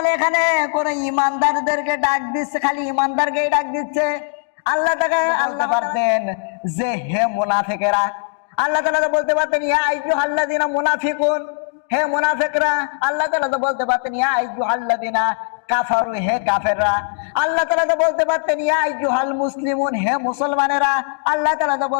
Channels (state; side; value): silent; right; digital silence